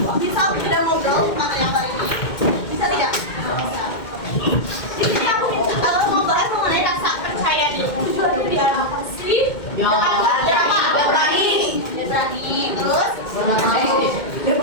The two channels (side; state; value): right; late; 2.1 ms